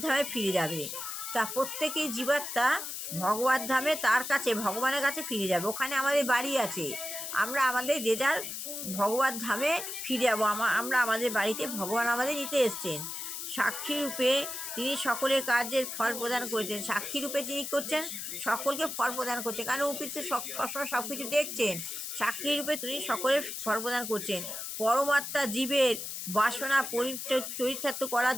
ধামে ফিরে যাবে। তা প্রত্যেকেই জীবাত্মা ভগবত ধামে তার কাছে ভগবানের কাছে ফিরে যাবে। ওখানে আমাদের বাড়ি আছে, আমরা আমাদের যে যার ভগবত ধামে ফিরে যাবো। আমরা আমাদের বাড়িতে ভগবান আমাদের নিতে এসছেন। সাক্ষী রূপে তিনি সকলের কার্যের ফল প্রদান করেছেন। সাক্ষী রূপে তিনি করছেন, সকলকে ফল প্রদান করছেন, কারণ উপর তো সবসময় সব কিছু দেখছেন। সাক্ষী রূপে তিনি সকলের ফল প্রদান করছেন। পরমাত্মা জীবের বাসনা চরিতার্থ করার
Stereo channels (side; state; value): left; noise; hiss, 6 dB below the sound